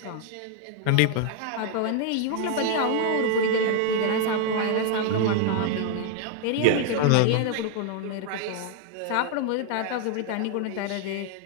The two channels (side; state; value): both; different; correlation 0.00